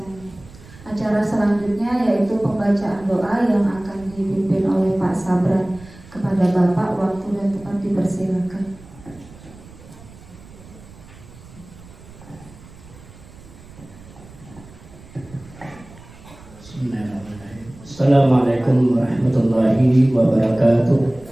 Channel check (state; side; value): noise; right; rumble, 20 dB below the sound